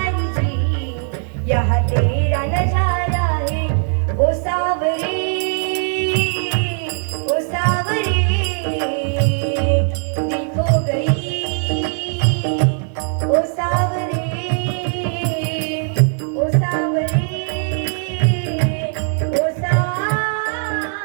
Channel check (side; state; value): left; silent; 55 dB below the other